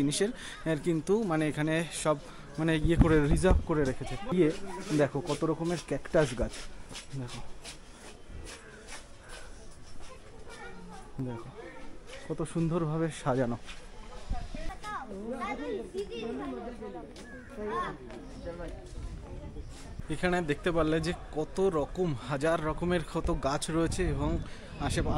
কিন্তু মানে এখানে সব মানে ইয়ে করে রিজার্ভ করে রেখেছে। ইয়ে দেখো কত রকমের ক্যাকটাস গাছ, দেখো দেখো কত সুন্দরভাবে সাজানো। এখানে দেখতে পারলে যে কত রকম হাজার রকমের কত গাছ রয়েছে, এবং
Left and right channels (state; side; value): identical; both; correlation 1.00